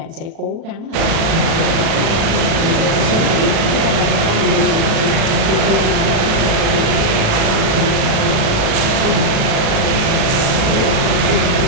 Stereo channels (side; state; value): left; late; 37 ms